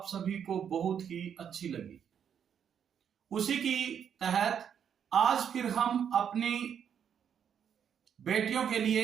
सभी को बहुत ही अच्छी लगी। उसी की तहत आज फिर हम अपनी बेटियों के लिए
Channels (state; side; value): quieter; left; 8.2 dB